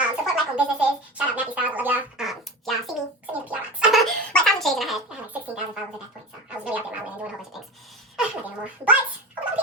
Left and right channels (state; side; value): normal; both; correlation 0.29